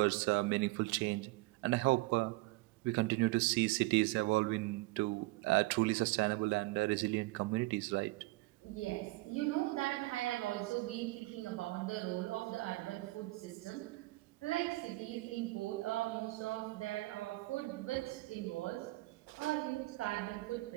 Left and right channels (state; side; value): quieter; left; 21.5 dB